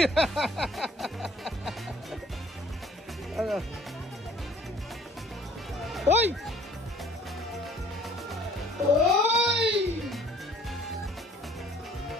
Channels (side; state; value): both; normal; correlation 0.56